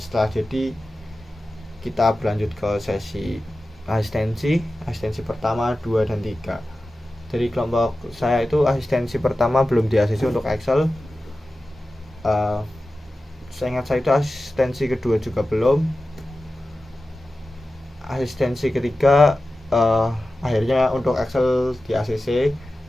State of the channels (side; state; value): both; normal; correlation 0.94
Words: setelah jadi, kita berlanjut ke sesi asistensi pertama, 2, dan 3. Dari kelompok saya itu asistensi pertama belum di-ACC untuk Excel. Saya ingat saya itu asistensi kedua juga belum. Asistensi ketiga akhirnya untuk Excel di-ACC